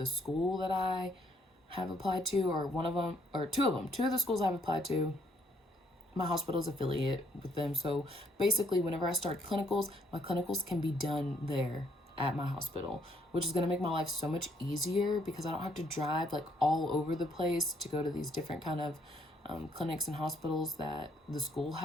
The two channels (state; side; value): normal; both; correlation 0.69